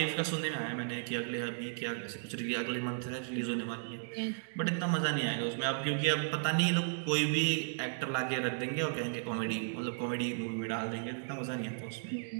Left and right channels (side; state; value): left; silent; digital silence